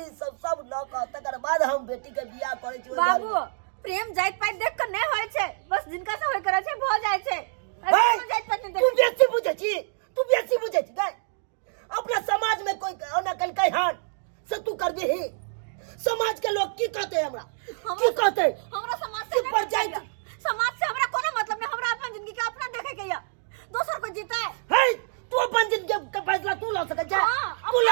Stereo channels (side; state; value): left; silent; digital silence